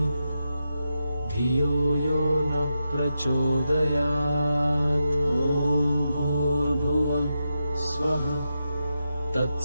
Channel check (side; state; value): both; inverted; correlation -0.87